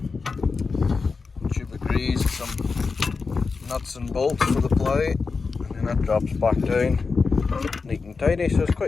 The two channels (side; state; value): right; quieter; 4.6 dB